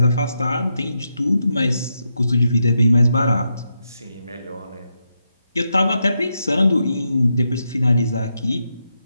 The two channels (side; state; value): both; inverted; correlation -0.84